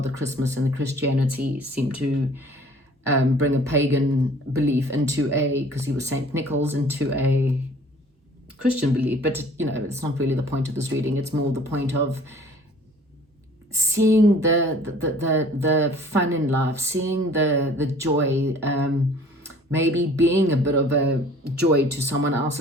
Christmas and the Christianity seem to bring a pagan belief into because he was Saint Nicholas, into a Christian belief. But it's not really the point of this reading. It's more the point of seeing the fun in life, seeing the joy, maybe being a bit of a joy to someone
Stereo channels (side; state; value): both; normal; correlation 0.51